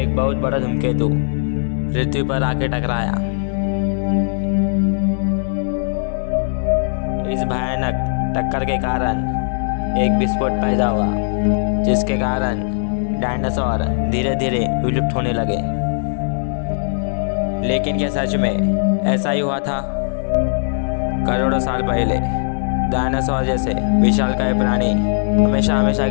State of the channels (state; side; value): silent; right; 67 dB below the other